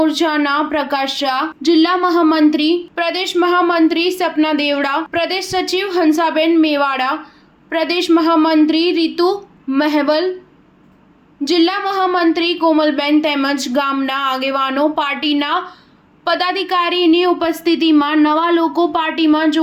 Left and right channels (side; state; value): both; identical; correlation 1.00